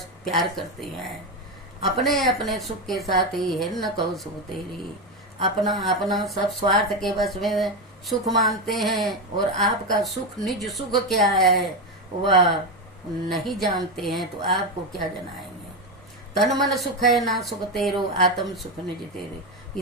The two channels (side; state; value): both; normal; correlation 0.12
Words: प्यार करते हैं। अपने अपने सुख के साथ ही है न कहो सुख तेरी। अपना अपना सब स्वार्थ के बस में सुख मानते हैं, और आपका सुख निज सुख क्या है वह नहीं जानते हैं, तो आपको क्या जनाएंगे। तन मन सुख है ना सुख तेरो, आत्म सुख निज तेरे। ये